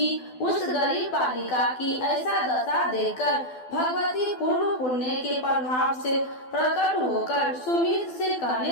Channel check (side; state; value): right; late; 12 ms